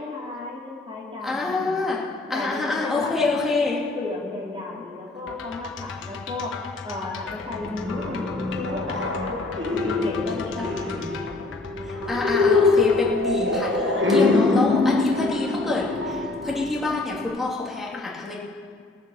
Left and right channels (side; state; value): right; quieter; 3.0 dB